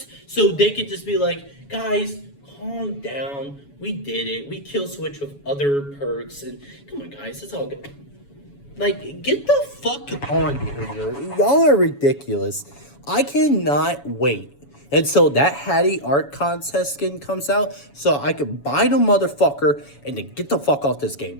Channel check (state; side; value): late; right; 7.1 ms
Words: so they could just be like, guys, calm down. We did it. We kill switch with other perks. And come on, guys, it's all good. Like, get the fuck on, behavior. Y'all are ridiculous. I cannot wait until that Hattie art contest skin comes out so I can buy the motherfucker and then get the fuck off this game,